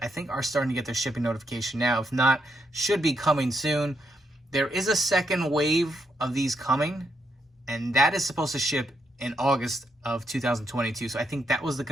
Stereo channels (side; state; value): both; normal; correlation 0.79